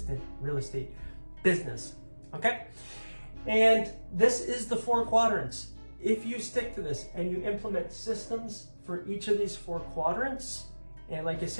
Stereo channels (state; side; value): inverted; both; correlation -1.00